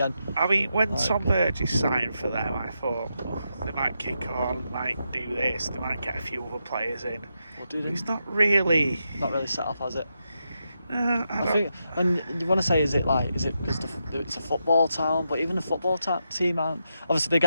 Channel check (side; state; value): both; inverted; correlation -0.85